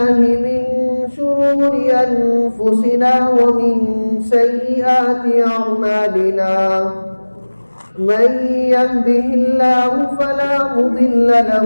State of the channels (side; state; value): both; inverted; correlation -1.00